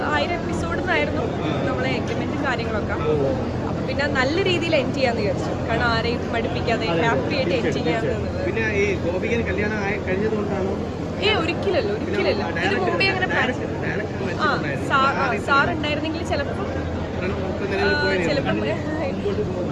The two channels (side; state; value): both; identical; correlation 1.00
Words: 1000 എപ്പിസോഡിനായിരുന്നു നമ്മളെ എഗ്രിമെന്റും കാര്യങ്ങളൊക്കെ. അപ്പൊ പിന്നെ നല്ല രീതിയിൽ എൻഡ് ചെയ്യാന്ന് വിചാരിച്ചു. കാരണം ആരെയും മടുപ്പിക്കാതെ ഹാപ്പി ആയിട്ട് എൻഡ് ചെയ്യാന്ന്. ഒരിക്കലല്ല ഇതിന് മുമ്പേ അങ്ങനെ സാർ ഉണ്ടായിരുന്നെങ്കിൽ ചിലപ്പോൾ